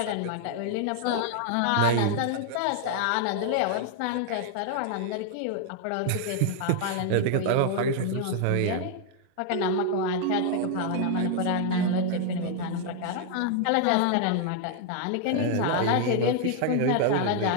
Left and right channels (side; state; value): both; different; correlation 0.00